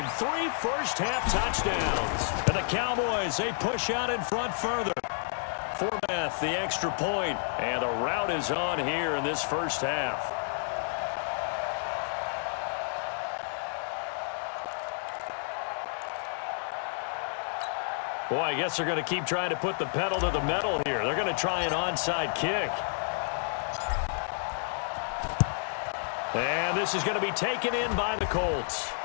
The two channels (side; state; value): right; silent; digital silence